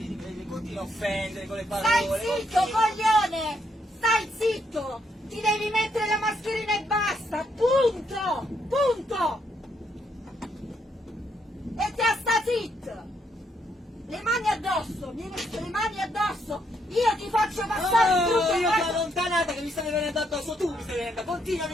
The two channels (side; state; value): both; normal; correlation 0.75